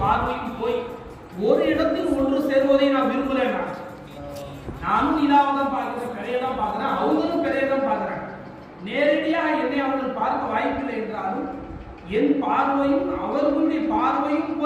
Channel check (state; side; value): identical; both; correlation 1.00